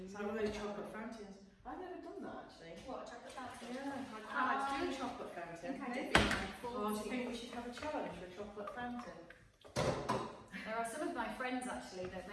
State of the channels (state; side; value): identical; both; correlation 1.00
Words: It's like one of those chocolate fountains. I've never done that actually. What, a chocolate fountain? Yeah, I'd quite like to do a chocolate fountain. I think I did. Oh, do you think we should have a challenge for a chocolate fountain? There are some of my friends actually that